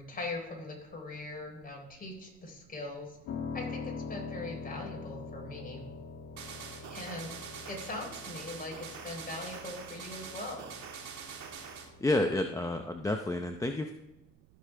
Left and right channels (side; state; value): right; noise; rumble, 23 dB below the sound